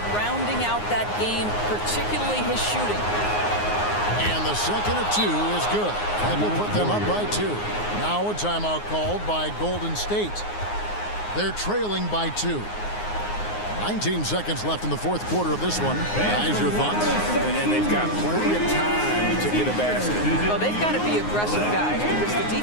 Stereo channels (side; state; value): right; late; 9.6 ms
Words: rounding out that game, particularly his shooting. And the second of 2 is good. That will put them up by 2. Now a timeout called by Golden State. They're trailing by 2. 19 seconds left in the fourth quarter of this one. Guys, your thoughts? And they've got plenty of time to get a basket. Well, they've got to be aggressive, guys, because the